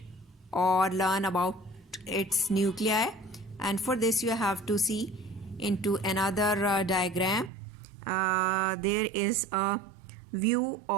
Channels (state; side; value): drops out; left; at 7.5 s